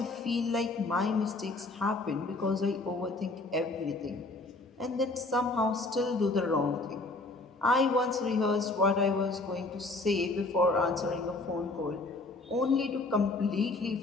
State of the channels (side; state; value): right; quieter; 3.2 dB